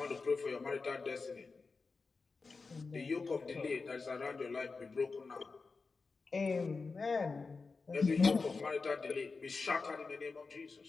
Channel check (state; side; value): quieter; right; 4.3 dB